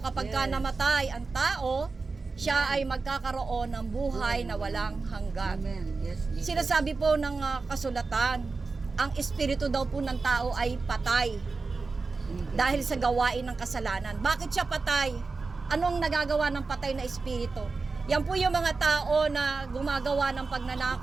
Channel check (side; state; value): left; quieter; 4.1 dB